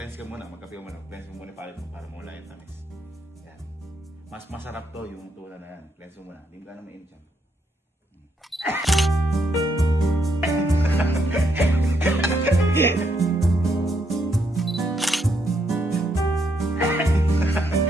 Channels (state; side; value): normal; both; correlation 0.76